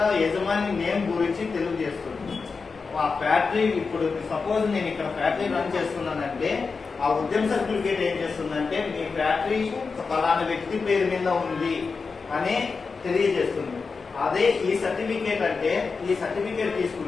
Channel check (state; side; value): quieter; right; 4.7 dB